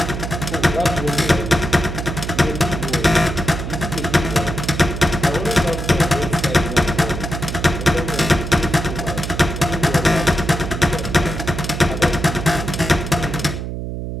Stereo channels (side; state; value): right; noise; hum, 5 dB below the sound